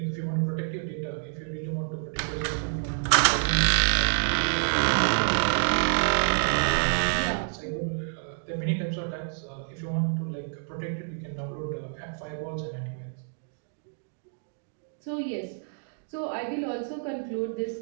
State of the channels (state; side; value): silent; left; digital silence